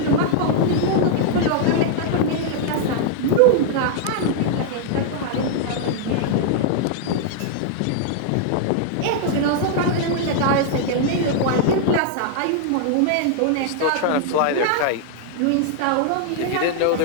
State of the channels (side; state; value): both; different; correlation -0.01